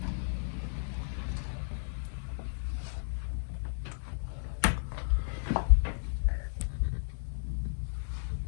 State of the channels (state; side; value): silent; right; 55 dB below the other